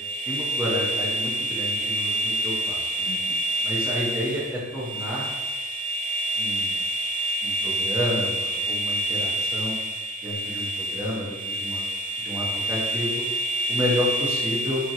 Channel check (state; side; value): normal; both; correlation 0.53